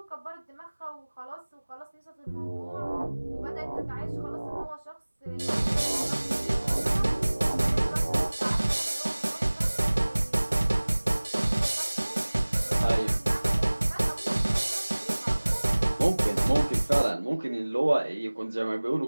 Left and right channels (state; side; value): inverted; both; correlation -1.00